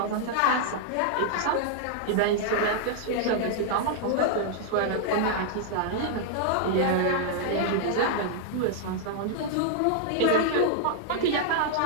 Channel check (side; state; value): both; different; correlation -0.01